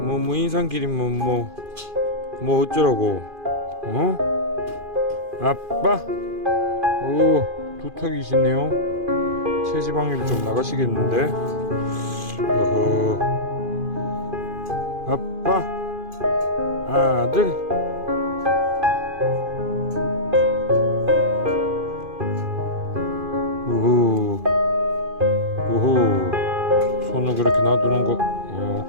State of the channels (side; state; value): left; late; 2.5 ms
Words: 뭐 인상끼리 뭐 어쩌라고? 어? 아빠. 오, 두턱이시네요. 체지방률 좀 나가시겠는데. 어허. 아빠, 아들. 우후. 우후. 손을 그렇게 놔두는 거,